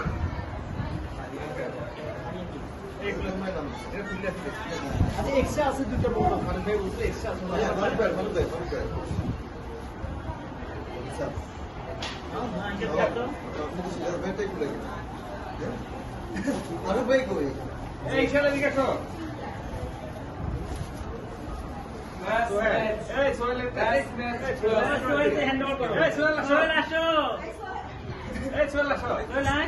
এক্সট্রা আছে দুটো বড় মানে ভাই বুঝলে এক্সট্রা আছে আরো ভাই কই এই ছেলে দিকে আসো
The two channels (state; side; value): identical; both; correlation 1.00